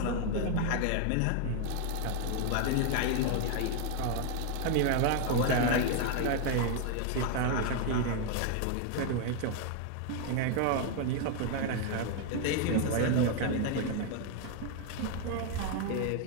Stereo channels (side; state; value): both; different; correlation 0.00